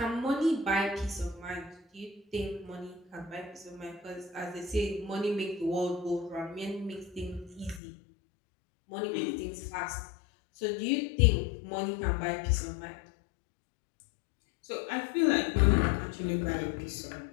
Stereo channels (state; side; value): drops out; right; at 7.8 s